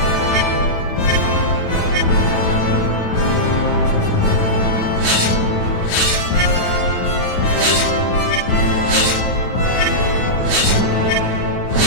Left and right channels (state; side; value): late; right; 9.4 ms